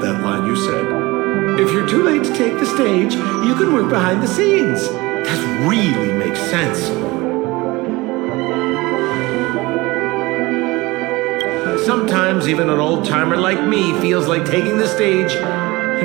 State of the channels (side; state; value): left; quieter; 21.9 dB